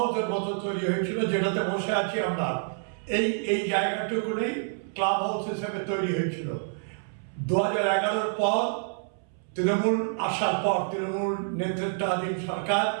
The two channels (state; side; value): silent; left; 59 dB below the other